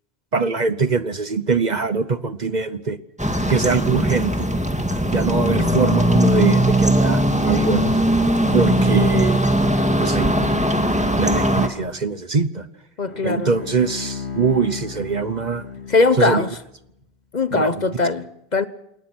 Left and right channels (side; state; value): both; normal; correlation 0.42